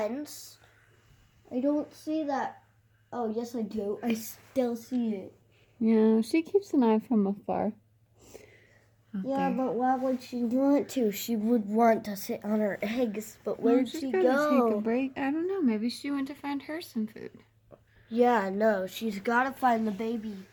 I don't see that. Oh, yes, I do. I still see it. Yeah, she keeps an eye from afar. Yeah, but why would she want to? She would want to sit on her eggs, but where did she go? Take a break. I don't know. Maybe she went to find her some food. Yeah, no, she's got to find the baby,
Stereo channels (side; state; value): both; identical; correlation 1.00